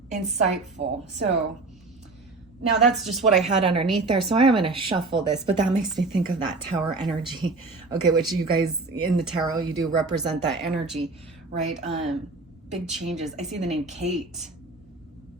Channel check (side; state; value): left; quieter; 3.5 dB